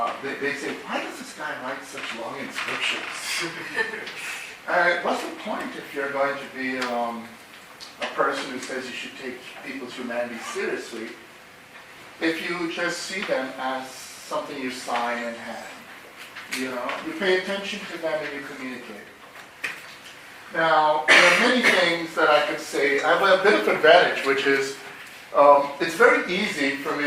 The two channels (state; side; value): identical; both; correlation 1.00